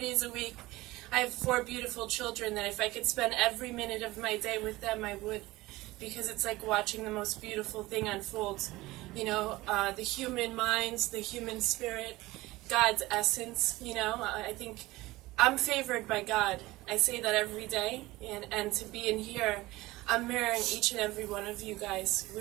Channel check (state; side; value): quieter; left; 19.3 dB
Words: a week. I have 4 beautiful children that if I could spend every minute of my day with them, I would. Because it's like watching the most beautiful thing unfold. You know, the human minds, the human spirit, God's essence, you know. I think I'm favored by God. I say that every day. And to be in here, I'm mirroring each and every one of you guys.